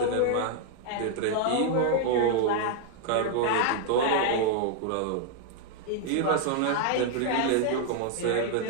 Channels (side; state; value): both; different; correlation 0.00